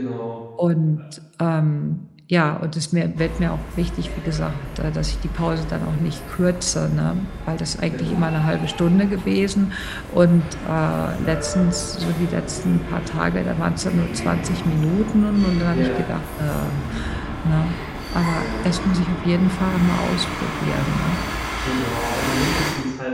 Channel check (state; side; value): identical; both; correlation 1.00